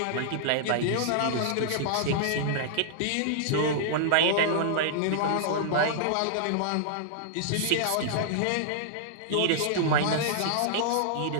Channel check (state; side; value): different; both; correlation -0.01